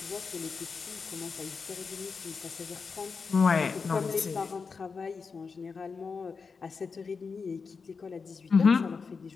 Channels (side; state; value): right; quieter; 5.1 dB